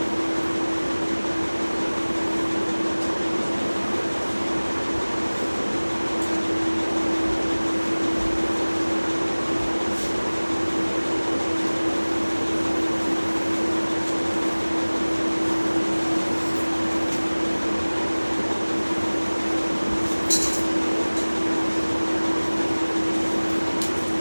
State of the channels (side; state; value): both; inverted; correlation -1.00